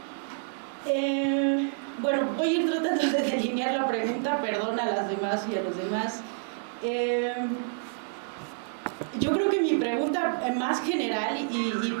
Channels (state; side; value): silent; left; digital silence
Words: Bueno, voy a ir tratando de delinear la pregunta, perdón a las demás y a los demás. Yo creo que mi pregunta más general